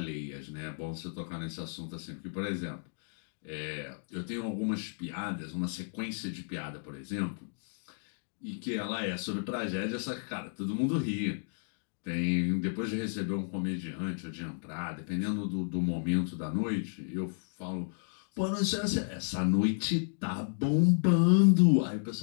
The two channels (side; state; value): right; silent; digital silence